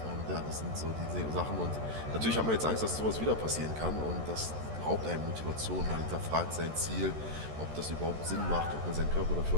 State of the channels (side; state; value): left; late; 13 ms